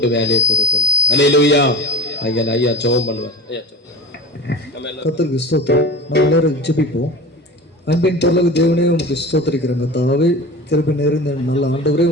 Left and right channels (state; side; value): normal; both; correlation 0.32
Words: வேலையை கொடுக்கணும். அல்லேலூயா. ஐயா ஜெபம் பண்ணுவார். ஐயா கர்த்தருக்கு ஸ்தோத்திரம். நம்ம எல்லாரும் ஜெபிப்போம். அன்பின் பரலோக தேவனே உமக்கு ஸ்தோத்திரிக்கிறோம். கர்த்தாவே கிருபை நிறைந்த நல்ல ஆண்டவரே